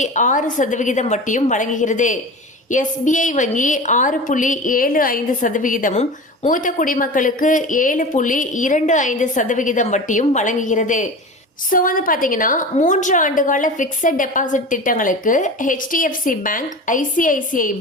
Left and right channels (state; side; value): normal; both; correlation 0.32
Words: வட்டியும் வழங்குகிறது. SBI வங்கி 6.75%, மூத்த குடிமக்களுக்கு 7.25% வட்டியும் வழங்குகிறது. ஸோ பார்த்தீங்கன்னா 3 ஆண்டுகால பிக்சட் டெபாசிட் திட்டங்களுக்கு HDFC bank, ICICI